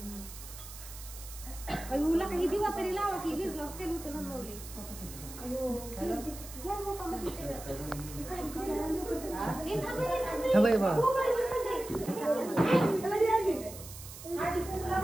अयोला काही दिवा तरी लावा की भिजला तेल होतं नमवली. थांबाय बा.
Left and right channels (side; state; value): right; noise; hiss, 14 dB below the sound